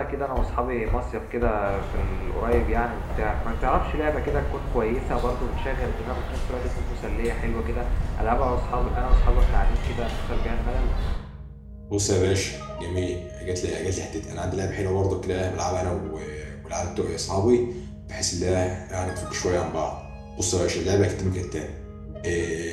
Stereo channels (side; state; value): both; identical; correlation 1.00